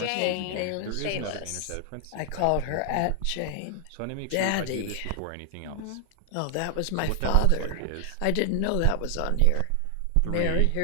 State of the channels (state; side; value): different; both; correlation 0.00